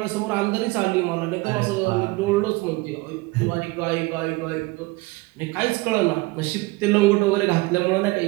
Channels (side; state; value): left; quieter; 22.5 dB